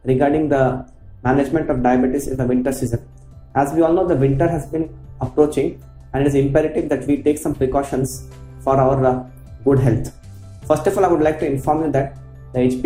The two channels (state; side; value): identical; both; correlation 1.00